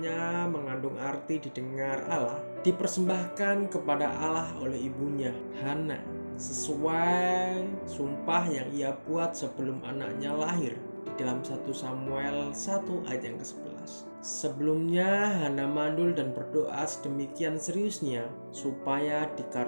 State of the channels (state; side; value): inverted; both; correlation -1.00